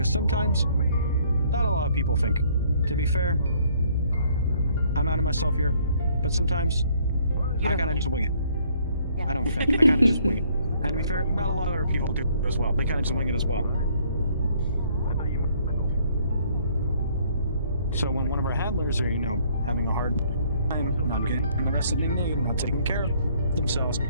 sometimes, not a lot of people think. To be fair, I'm out of myself here. But sometimes, You I don't kinda think. just wing it. Yeah. I don't think. I kinda just wing it. And to be fair, not a lot of other people do as well. They kinda just wing it as well. So when one of our handlers are, having a hard time not getting the rest of they need, not taking care of themselves,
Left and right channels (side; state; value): both; inverted; correlation -0.63